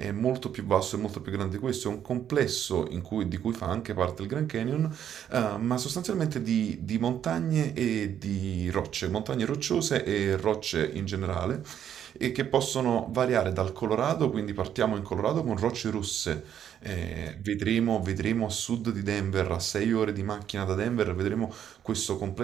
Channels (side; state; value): left; quieter; 9.6 dB